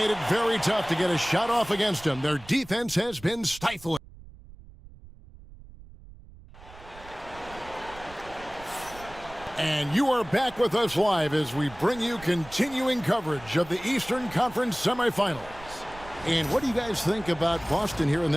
it very tough to get a shot off against them. Their defense has been stifling. And you are back with us live as we bring you continuing coverage of the Eastern Conference semifinals. And what do you guys think about Boston here in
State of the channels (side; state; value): right; noise; rumble, 19 dB below the sound